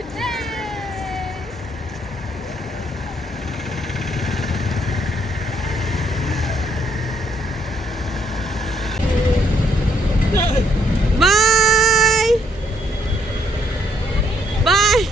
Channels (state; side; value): normal; both; correlation 0.70